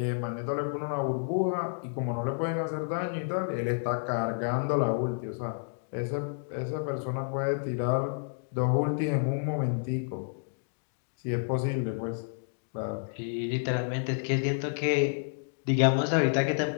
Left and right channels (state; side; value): silent; right; digital silence